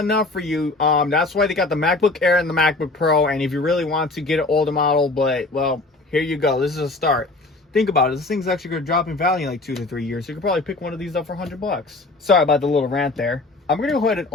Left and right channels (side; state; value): right; quieter; 3.2 dB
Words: enough for you, that's why they got the MacBook Air and the MacBook Pro. And if you really want to get an older model, but, well, here you go. This is a start. Think about it. This thing's actually going to drop in value in like 2 to 3 years. So you could probably pick one of these up for $100. Sorry about the little rant there. I'm going to go ahead and